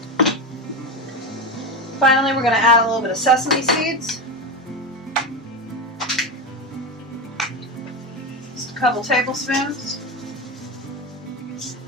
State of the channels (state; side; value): normal; both; correlation 0.18